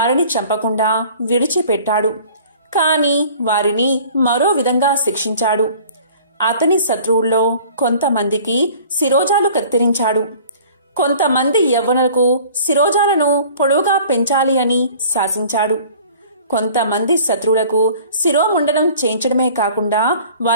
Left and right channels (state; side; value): inverted; both; correlation -0.48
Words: చంపకుండా విడిచిపెట్టాడు. కాని వారిని మరో విధంగా శిక్షించాడు. అతని శత్రువుల్లో కొంతమందికి శిరోజాలు కత్తిరించాడు. కొంతమంది యవ్వనులకు శిరోజాలను పొడవుగా పెంచాలి అని శాసించాడు. కొంతమంది శత్రువులకు శిరోముండనం చేయించడమే కాకుండా